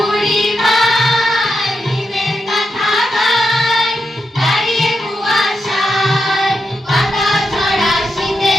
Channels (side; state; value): both; normal; correlation 0.86